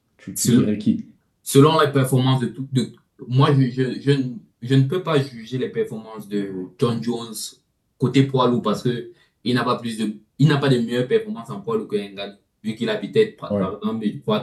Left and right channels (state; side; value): identical; both; correlation 1.00